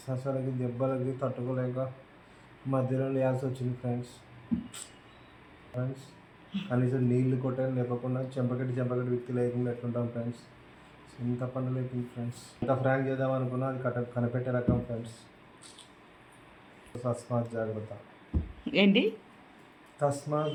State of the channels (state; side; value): identical; both; correlation 1.00